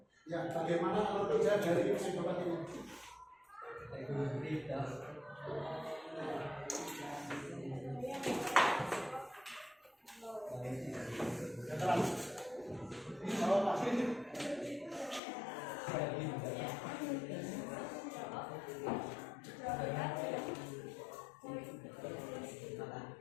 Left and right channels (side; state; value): right; drops out; at 15.2 s